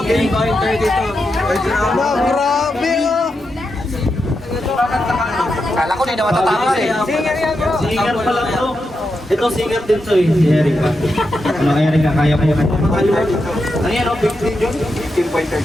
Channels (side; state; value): both; normal; correlation 0.86